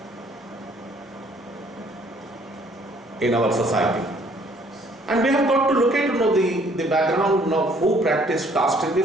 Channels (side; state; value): both; normal; correlation 0.61